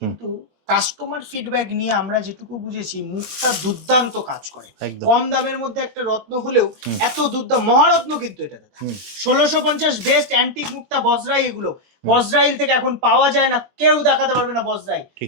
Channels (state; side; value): late; left; 20 ms